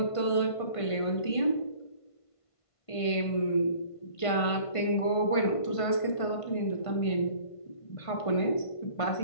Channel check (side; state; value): right; late; 1.5 ms